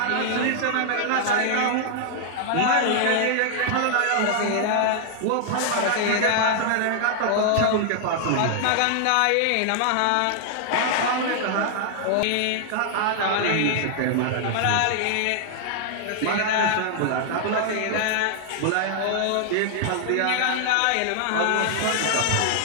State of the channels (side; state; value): both; different; correlation -0.01